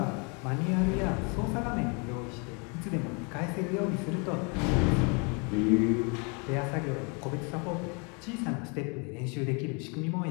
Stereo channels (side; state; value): right; quieter; 33.7 dB